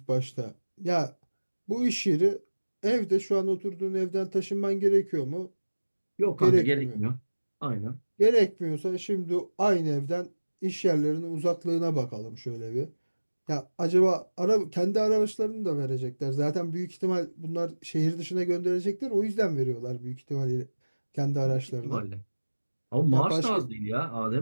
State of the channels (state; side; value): inverted; both; correlation -1.00